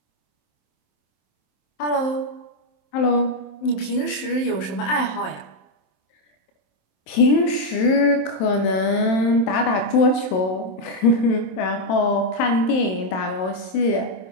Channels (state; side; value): late; right; 27 ms